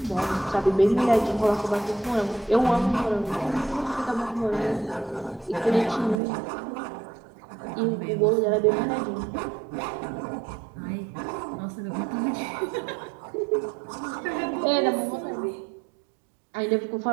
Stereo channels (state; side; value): drops out; left; at 6.2 s